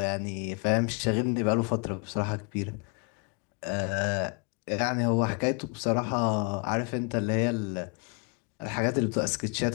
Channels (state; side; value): quieter; right; 35.0 dB